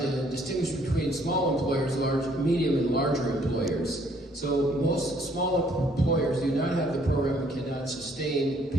to distinguish between small employers, large, medium, and larger employers. So most small employers do not have the program and cannot sustain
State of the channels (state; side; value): normal; both; correlation 0.64